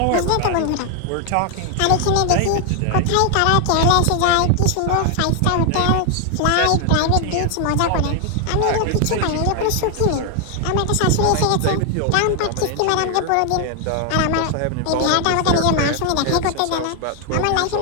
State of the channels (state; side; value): different; both; correlation 0.00